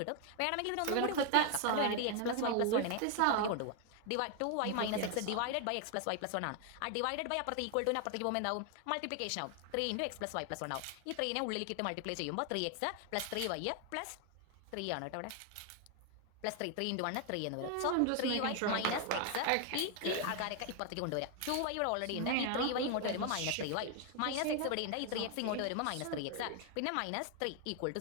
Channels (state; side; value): different; both; correlation 0.00